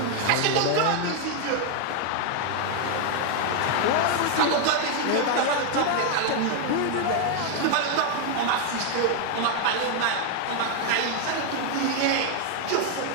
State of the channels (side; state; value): both; different; correlation 0.01